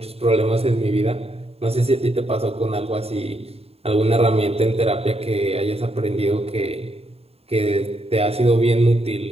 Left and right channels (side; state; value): left; late; 0.29 ms